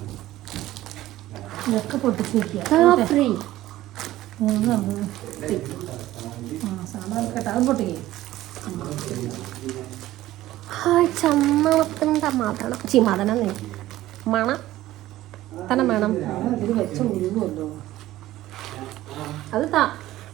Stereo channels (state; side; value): quieter; left; 15.3 dB